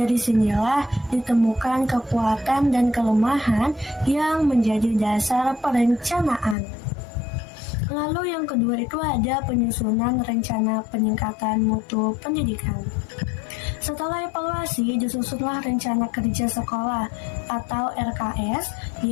sinilah ditemukan kekuatan dan kelemahan yang menjadi dasar perencanaan. Lalu yang kedua itu ada penyusunan rencana peningkatan mutu pendidikan. Setelah evaluasi, disusunlah rencana kerja sekolah atau RKS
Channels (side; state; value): right; drops out; at 6.6 s